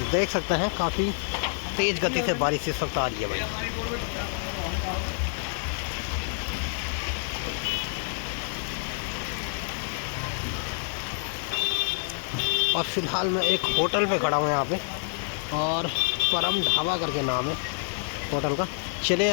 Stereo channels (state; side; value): silent; right; digital silence